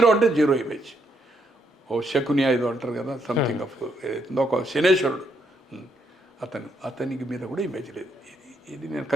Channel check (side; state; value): both; normal; correlation 0.75